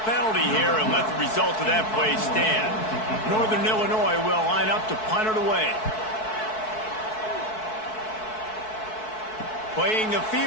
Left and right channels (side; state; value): right; late; 4.6 ms